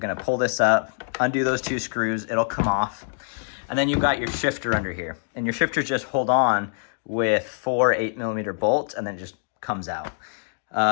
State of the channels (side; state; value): right; silent; 62 dB below the other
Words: gonna pull this up, undo those two screws, it'll come off. And then you've got your shifter under here. And your shifters just hold on with 4 8mm bolts, and then it just comes out.